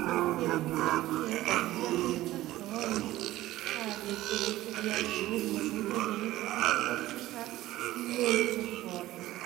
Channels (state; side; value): quieter; left; 15.9 dB